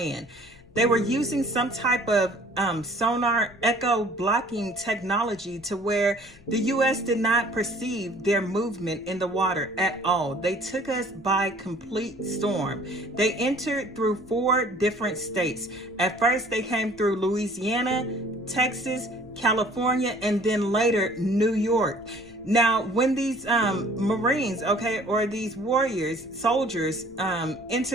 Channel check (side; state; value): left; noise; rumble, 25 dB below the sound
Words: They were using some type of sonar echo blocking technology to where the U.S. did not perceive their movement in the water at all. They took us by complete storm. They entered through 4 different states. At first, they came through Louisiana, Texas, California, and then later New York. Now, when these Marines, or these warriors, soldiers,